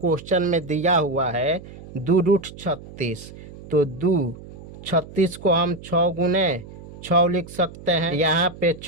में दिया हुआ है 2√36, तो 2×36 को हम 6 गुने 6 लिख सकते हैं। यहाँ पे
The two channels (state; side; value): noise; right; hum, 16 dB below the sound